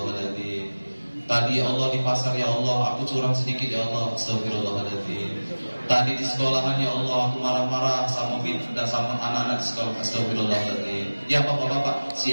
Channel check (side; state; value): both; inverted; correlation -1.00